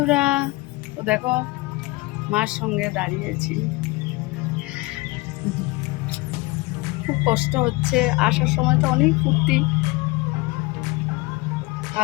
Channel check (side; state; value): right; quieter; 22.9 dB